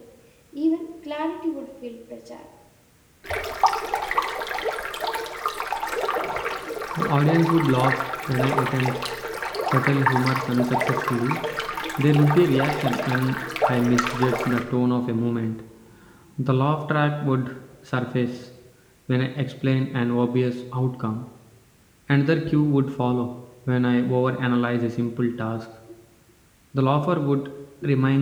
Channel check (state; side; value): identical; both; correlation 1.00